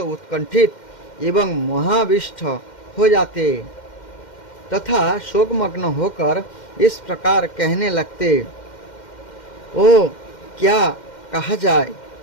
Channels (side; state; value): right; late; 2.1 ms